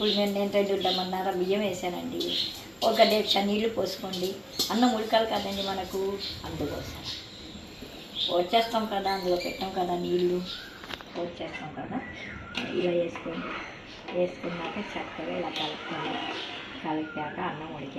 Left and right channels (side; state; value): both; identical; correlation 1.00